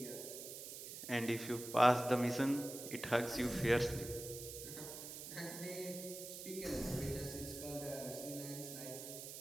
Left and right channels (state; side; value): noise; right; hiss, 9 dB below the sound